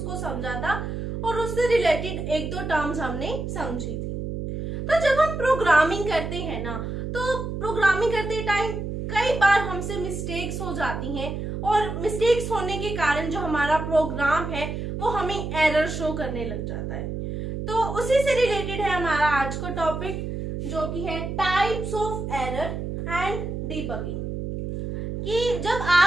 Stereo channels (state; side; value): noise; right; hum, 5 dB below the sound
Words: समझा था और उससे रिलेटेड एक दो टर्म्स हमने समझी थी। तो जब हम प्रोग्रामिंग करते हैं ना, तो प्रोग्रामिंग करते टाइम कई बार हमसे मिस्टेक्स हो जाती हैं और मिस्टेक्स होने के कारण जो हमारा प्रोग्राम है वो हमें एरर शो करने लग जाता है। तो उसी से रिलेटेड है हमारा आज का टॉपिक, जो कि है types of error and debugging. कि जब